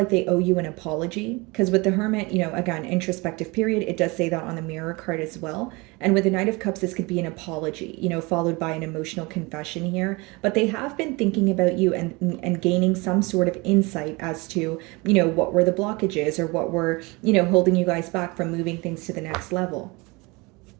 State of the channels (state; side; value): quieter; left; 25.5 dB